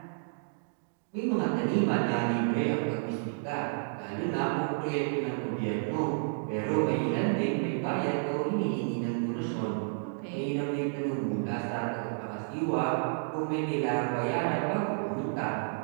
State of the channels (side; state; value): left; silent; digital silence